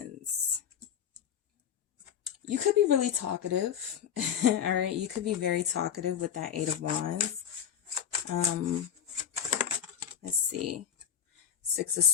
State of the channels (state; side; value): quieter; right; 8.9 dB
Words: You could be really talkative. All right, you could be very talkative with that 8 of Wands. Let's see. 6 of